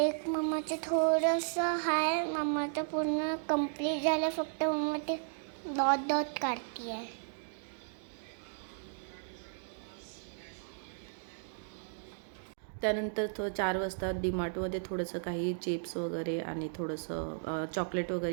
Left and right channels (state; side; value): silent; left; digital silence